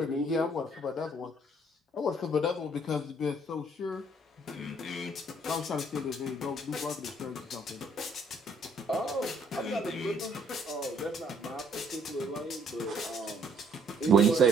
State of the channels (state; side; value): normal; both; correlation 0.64